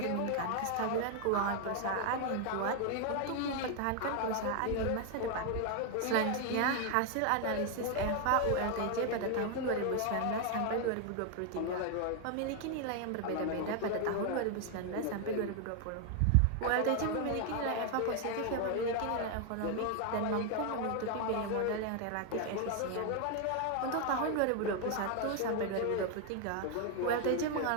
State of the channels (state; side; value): different; both; correlation 0.01